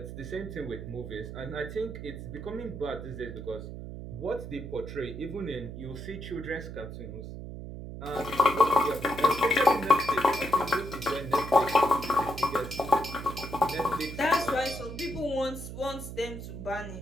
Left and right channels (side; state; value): right; noise; hum, 9 dB below the sound